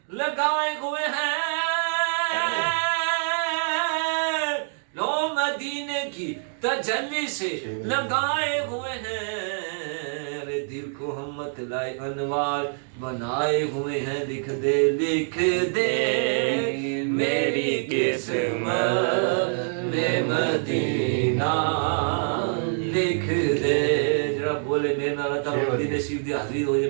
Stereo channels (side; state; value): left; silent; digital silence